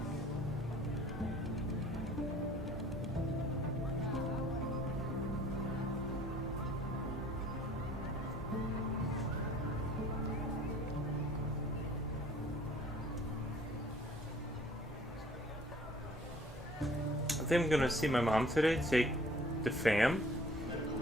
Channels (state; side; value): normal; both; correlation 0.54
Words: I think I'm gonna see my mom today, take the fam.